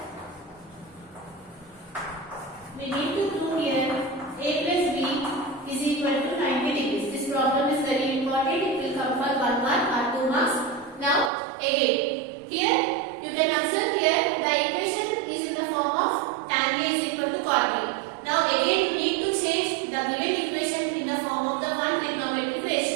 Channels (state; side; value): drops out; left; at 11.3 s